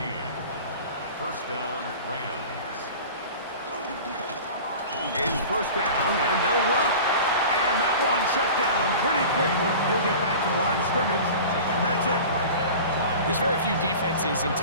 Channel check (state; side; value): inverted; both; correlation -0.37